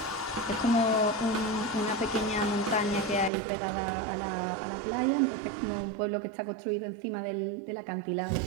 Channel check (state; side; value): drops out; left; at 3.3 s